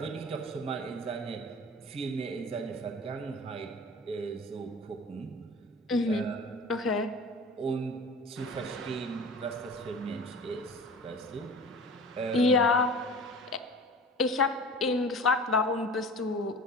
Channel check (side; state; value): both; normal; correlation 0.39